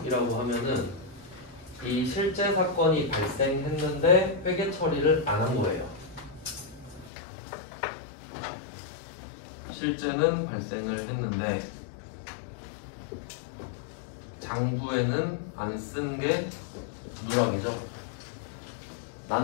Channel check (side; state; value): right; drops out; at 7.1 s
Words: 하면은 이 실제 사건이 발생했는데 회계 처리를 안 한 거예요. 실제는 발생을 했는데 장부에는 안 쓴 게 누락이죠.